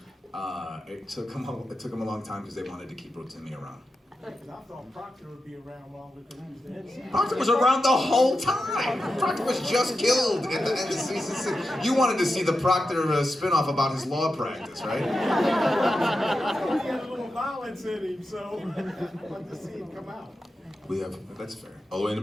it took him a long time because they wanted to keep Rotimi around. Because I thought Proctor would be around longer because he was the head. Proctor was around the whole time. Proctor was just killed at the end of season 6. You wanted to see the Proctor spinoff about his law practice, right? He had a little violence in him, so I'd like to see him come out. That's fair. All the way in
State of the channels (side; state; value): both; normal; correlation 0.90